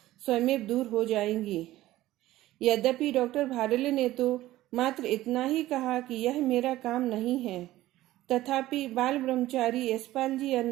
स्वयं दूर हो जाएंगी। यद्यपि डॉक्टर भारिल ने तो मात्र इतना ही कहा कि यह मेरा काम नहीं है, तथापि बाल ब्रह्मचारी यशपाल जी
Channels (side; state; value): left; quieter; 15.8 dB